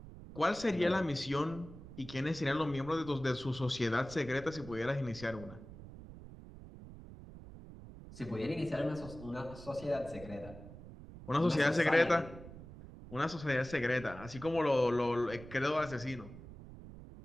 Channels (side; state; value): right; noise; rumble, 15 dB below the sound